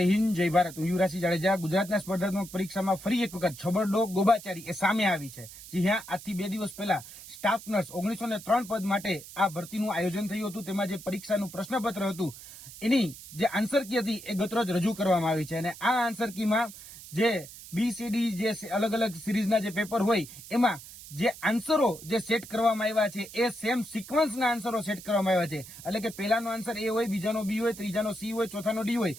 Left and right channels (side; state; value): right; noise; hiss, 16 dB below the sound